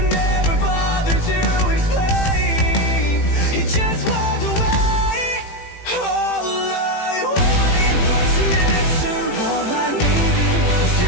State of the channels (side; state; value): right; late; 18 ms